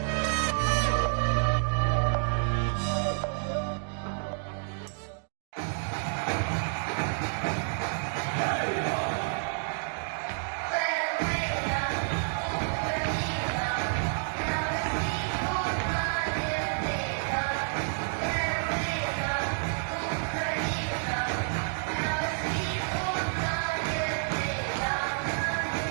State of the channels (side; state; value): left; silent; digital silence